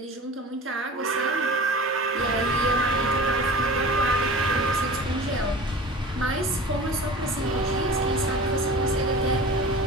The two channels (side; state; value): both; normal; correlation 0.37